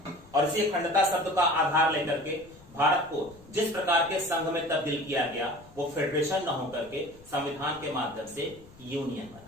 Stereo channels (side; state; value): left; noise; rumble, 24 dB below the sound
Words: और इसी अखंडता शब्द का आधार लेकर के भारत को जिस प्रकार के संघ में तब्दील किया गया, वो फेडरेशन न होकर के संविधान के माध्यम से यूनियन